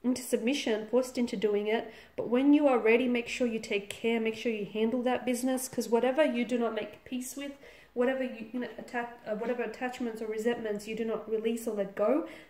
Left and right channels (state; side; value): identical; both; correlation 1.00